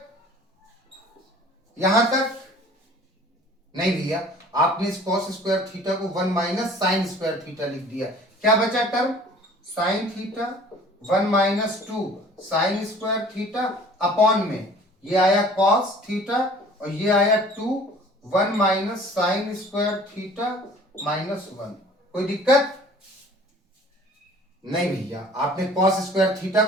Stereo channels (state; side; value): normal; both; correlation 0.49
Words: यहां तक नहीं भैया, आपने इस कॉस स्क्वायर थीटा को 1 माइनस साइन स्क्वायर थीटा लिख दिया, क्या बचा term sign theta 1 minus 2 sign square theta upon में ये आया कॉस थीटा, और ये आया 2 1 माइनस साइन स्क्वायर थीटा -1, कोई दिक्कत नहीं भैया, आपने कॉस स्क्वायर थीटा